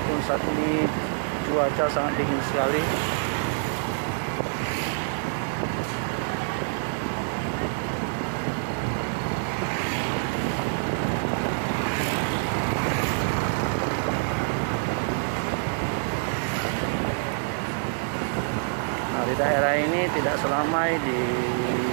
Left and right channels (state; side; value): silent; left; 61 dB below the other